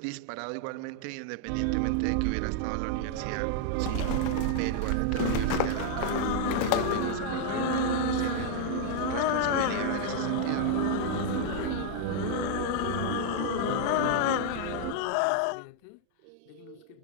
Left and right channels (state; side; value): different; both; correlation 0.00